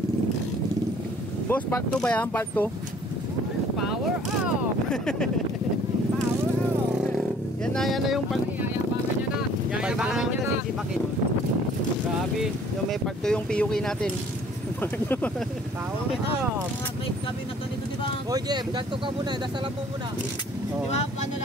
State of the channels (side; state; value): both; normal; correlation 0.56